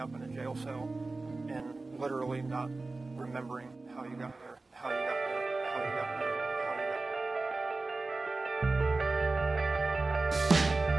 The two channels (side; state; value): left; quieter; 3.4 dB